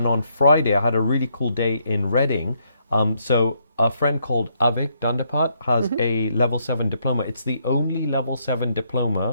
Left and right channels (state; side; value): inverted; both; correlation -0.74